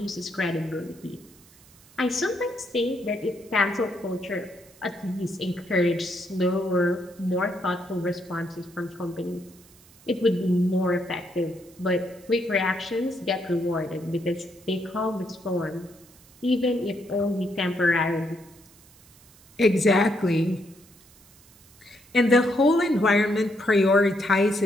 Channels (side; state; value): right; noise; hiss, 26 dB below the sound